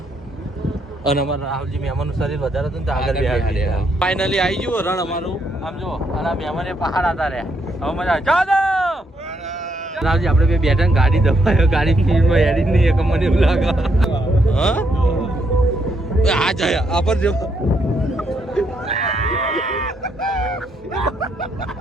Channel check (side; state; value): both; normal; correlation 0.75